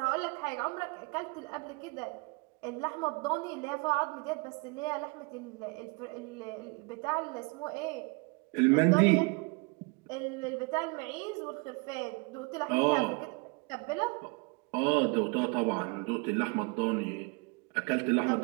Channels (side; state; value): left; quieter; 29.9 dB